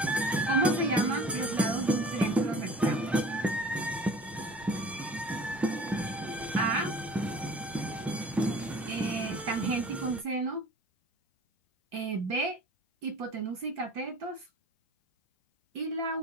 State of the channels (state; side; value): normal; both; correlation 0.45